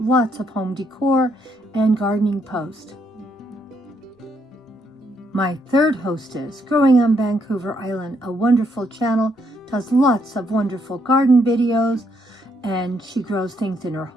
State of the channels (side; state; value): both; normal; correlation 0.74